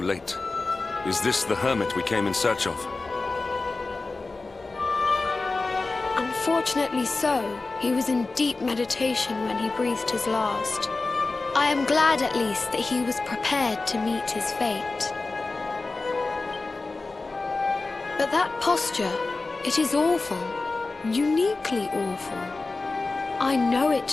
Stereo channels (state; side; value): quieter; right; 3.6 dB